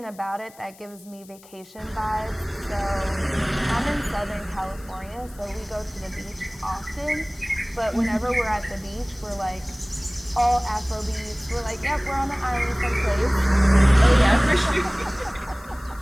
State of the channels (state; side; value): noise; left; hiss, 23 dB below the sound